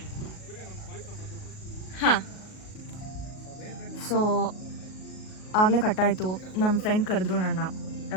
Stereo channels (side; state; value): right; late; 38 ms